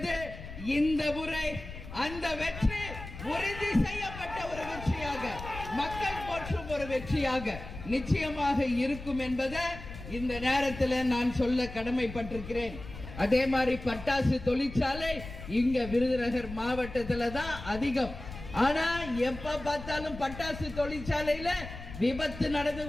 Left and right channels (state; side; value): noise; left; rumble, 12 dB below the sound